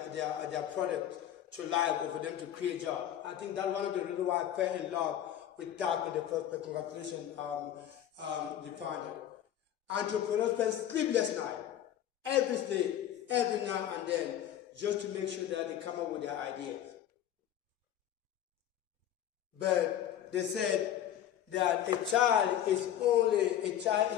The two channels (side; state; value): right; quieter; 10.9 dB